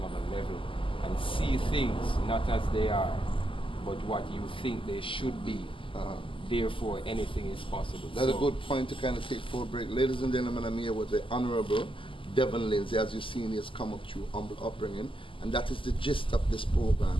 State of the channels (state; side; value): late; right; 0.25 ms